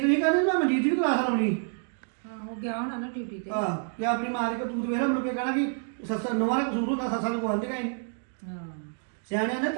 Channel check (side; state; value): left; silent; 59 dB below the other